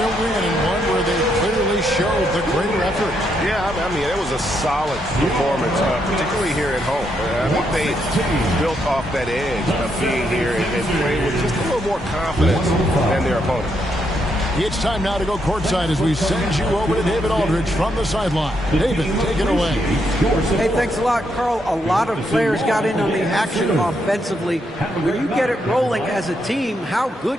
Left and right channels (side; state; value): both; normal; correlation 0.78